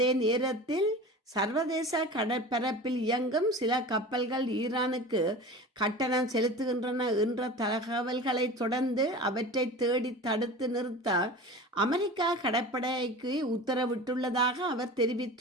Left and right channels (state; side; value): normal; both; correlation 0.35